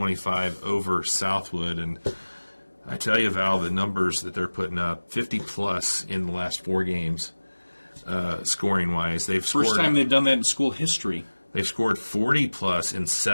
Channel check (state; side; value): inverted; both; correlation -1.00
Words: over Southwood. And I tell you, Val, the numbers that they're putting up, 50-plus in the last 4 games, scoring-wise. First time they've done that in school history. They've scored 40-plus in